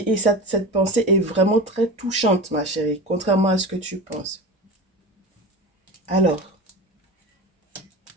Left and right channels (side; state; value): both; normal; correlation 0.30